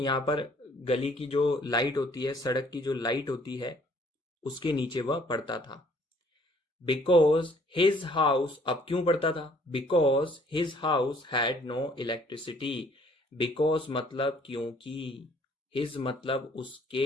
पर गली की जो लाइट होती है, सड़क की जो लाइट होती है, उसके नीचे वह पढ़ता था। बिकॉज हिज हाउस, अब क्यों पढ़ता था? Because his house had no electricity. Because मतलब क्योंकि, हिज मतलब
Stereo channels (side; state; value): both; normal; correlation 0.60